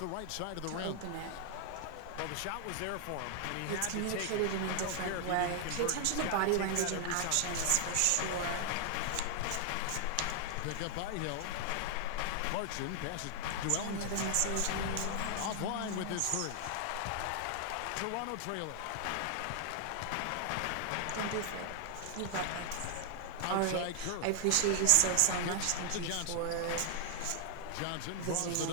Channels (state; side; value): different; both; correlation 0.00